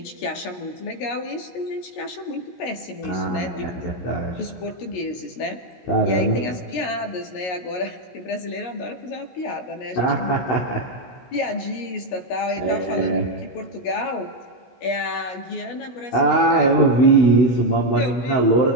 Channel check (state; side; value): late; right; 17 ms